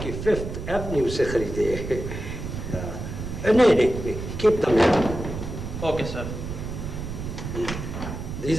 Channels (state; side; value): noise; right; rumble, 6 dB below the sound